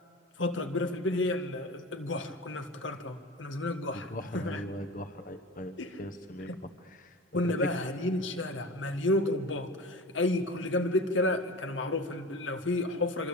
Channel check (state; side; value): normal; both; correlation 0.33